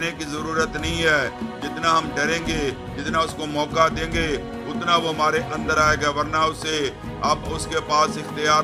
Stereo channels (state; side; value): identical; both; correlation 1.00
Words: کی ضرورت نہیں ہے۔ جتنا ہم ڈریں گے، جتنا اس کو موقع دیں گے، اتنا وہ ہمارے اندر آئے گا، ورنہ اسے اب اس کے پاس اختیار